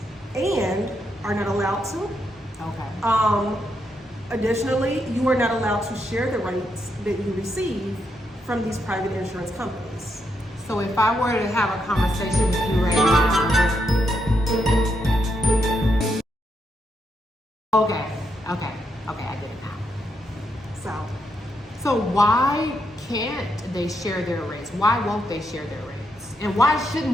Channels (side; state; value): both; normal; correlation 0.80